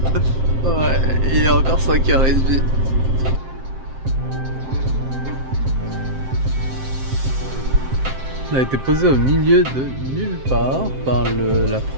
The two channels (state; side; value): late; left; 7.6 ms